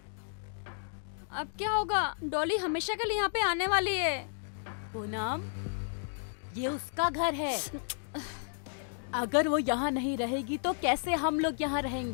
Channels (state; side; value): silent; right; digital silence